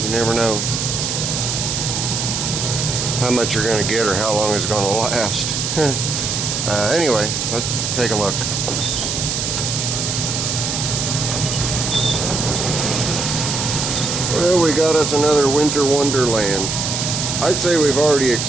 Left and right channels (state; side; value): noise; right; hiss, 1 dB below the sound